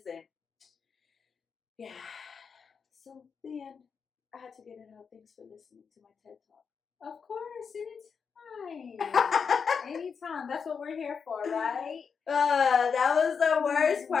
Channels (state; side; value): quieter; right; 6.1 dB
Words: And yeah. So, the end. I had to get it out. Thanks for listening to my TED Talk. Of course. Anytime. Anytime. That's what we're here for, right? That was the worst